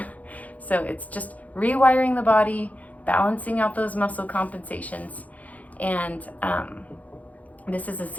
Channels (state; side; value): late; right; 0.074 ms